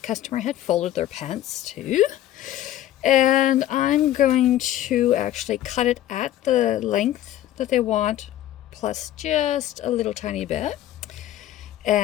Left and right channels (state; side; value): quieter; right; 13.1 dB